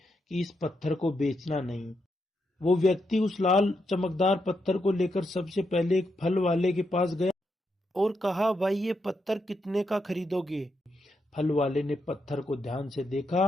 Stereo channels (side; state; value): both; normal; correlation 0.82